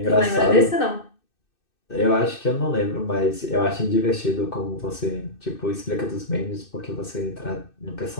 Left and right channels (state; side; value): late; right; 2.6 ms